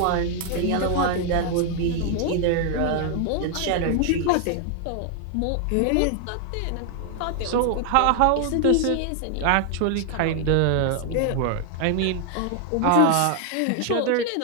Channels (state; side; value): different; both; correlation 0.00